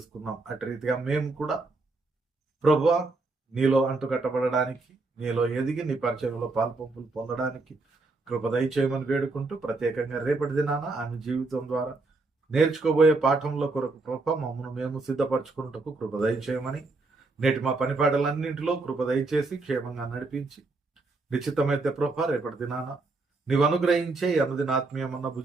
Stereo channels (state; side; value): quieter; left; 3.5 dB